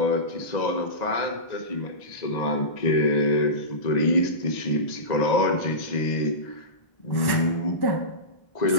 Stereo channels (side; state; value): right; late; 1.1 ms